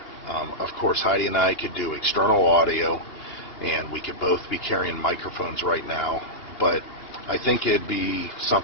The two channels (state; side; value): late; right; 2.8 ms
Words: Of course, Heidi and I could do external audio, and we could both be carrying microphones right now, but I think it'd be